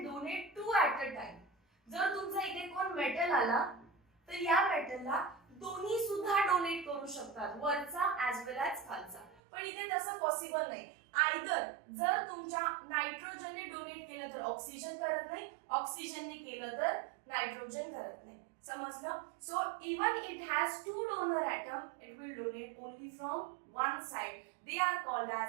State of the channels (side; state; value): left; drops out; at 9.4 s